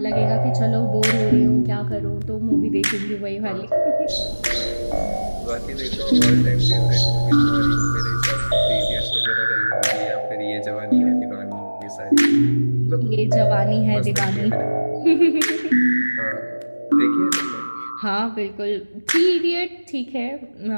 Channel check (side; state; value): both; inverted; correlation -1.00